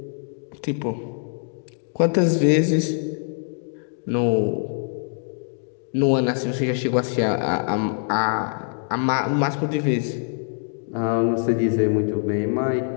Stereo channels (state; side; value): silent; right; 63 dB below the other